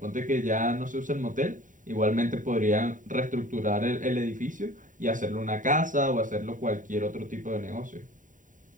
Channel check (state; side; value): late; left; 0.38 ms